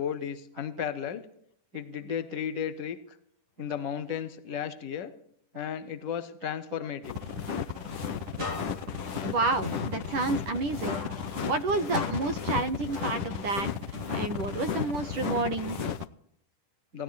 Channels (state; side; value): late; left; 10 ms